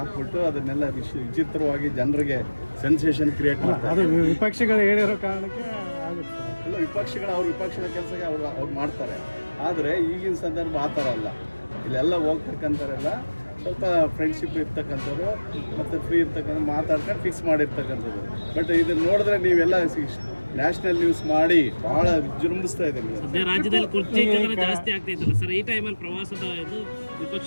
ಅದನ್ನೆಲ್ಲ ವಿಚಿತ್ರವಾಗಿ ಜನರಿಗೆ ಸೆನ್ಸೇಷನ್ ಕ್ರಿಯೇಟ್ ಮಾಡ್ತಾರೆ. ವಿಪಕ್ಷಗಳು ಹೇಳಿರೋ ಕಾರಣಕ್ಕೆ ಆಗುತ್ತೆ. ಎಲ್ಲ ವಿಪಕ್ಷಗಳು ಅವ್ರ ವಿಪಕ್ಷದ ಕೆಲಸಕ್ಕೆ ಅವ್ರು ಮಾಡ್ತಾರೆ. ಆದರೆ ಈಗಿನ ಸಂದರ್ಭ ಆ ಥರ ಅಲ್ಲ. ಇಲ್ಲೆಲ್ಲ ಹೋಗ್ತಕ್ಕಂಥವ್ರೆಲ್ಲ ಸ್ವಲ್ಪ ಫ್ರೆಂಡ್ಶಿಪ್ ಇರ್ತಕ್ಕಂಥವ್ರು ಮತ್ತು ಫ್ರೀ ಇರ್ತಕ್ಕಂಥ ಮಾತಾಡ್ಕೊಂಡು ಫಿಕ್ಸ್ ಮಾಡಿರ್ತಕ್ಕಂಥದ್ದು. ಬಟ್ ಇದನ್ನು ನೋಡಿದ್ರೆ ನೀವೆಲ್ಲ ನ್ಯಾಷನಲ್ ನ್ಯೂಸ್ ಮಾಡಿ ಭಾಳ ವಿಜೃಂಭಿಸ್ತಾ ಇದೆ. ರಾಜ್ಯದಲ್ಲಿ ಕುರ್ಚಿ ಜಾಸ್ತಿ ಆಗ್ತೈತಲ್ಲ ಸರ್, ಈ ಟೈಮಲ್ಲಿ ಪ್ರವಾಸದ ಇದು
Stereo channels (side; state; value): both; inverted; correlation -1.00